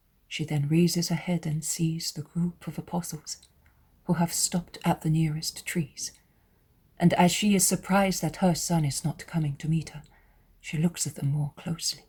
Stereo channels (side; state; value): both; identical; correlation 1.00